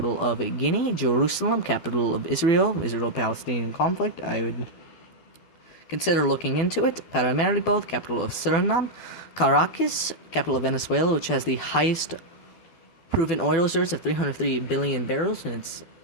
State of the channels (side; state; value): right; late; 12 ms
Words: of Guinea. Jerusalem, capital of Israel-Palestinian conflict. I would consider looking into it. Paramaribo, the capital of Suriname. Caracas, capital of Venezuela, which has the highest proven oil reserves of 303 billion barrels, and it's